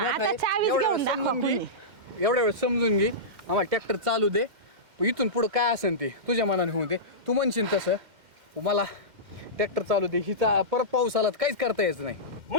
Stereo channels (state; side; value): late; left; 2.1 ms